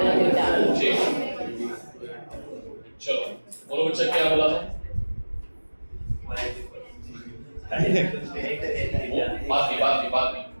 चलो बोलो बच्चा क्या बोला था? बात नहीं।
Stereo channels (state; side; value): inverted; both; correlation -1.00